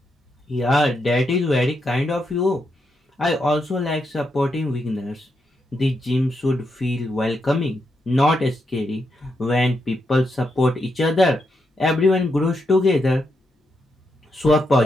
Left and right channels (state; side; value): normal; both; correlation 0.83